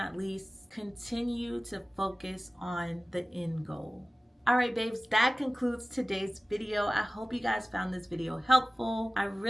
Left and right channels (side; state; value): both; normal; correlation 0.97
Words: least, continue to focus on the end goal. All right, babes, that concludes today's video. I hope you guys found this video helpful. I